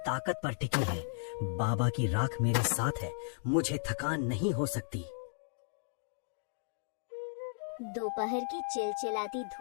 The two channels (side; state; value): right; silent; digital silence